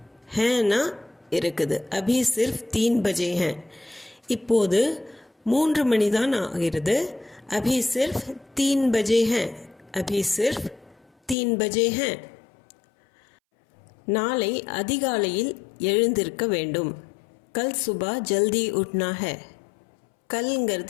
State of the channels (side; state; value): right; drops out; at 11.4 s